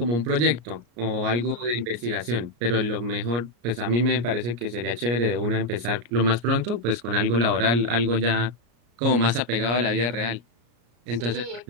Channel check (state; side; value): late; left; 34 ms